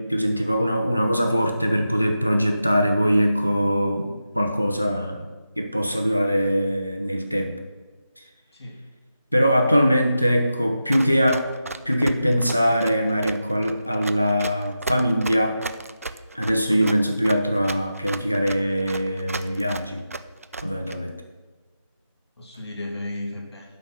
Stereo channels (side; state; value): both; inverted; correlation -0.89